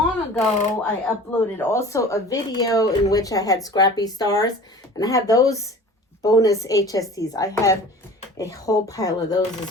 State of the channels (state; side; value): normal; both; correlation 0.41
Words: ago, I uploaded also a video in which I had scrappy stars. And I have those bonus HSTs. I have a whole pile of those